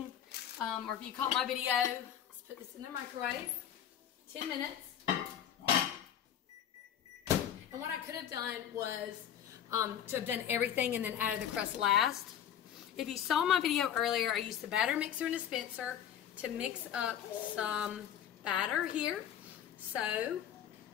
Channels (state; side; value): quieter; right; 9.7 dB